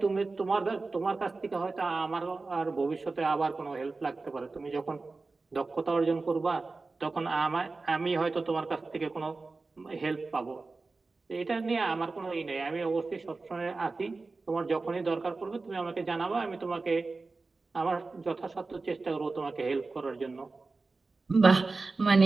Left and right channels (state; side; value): quieter; left; 3.8 dB